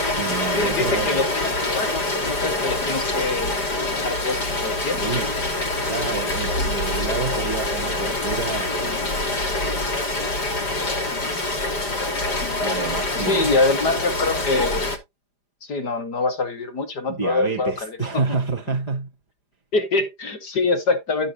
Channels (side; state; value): right; late; 5.0 ms